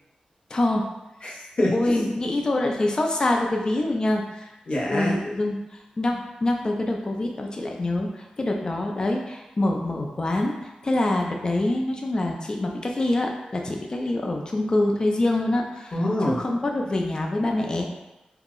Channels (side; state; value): both; normal; correlation 0.95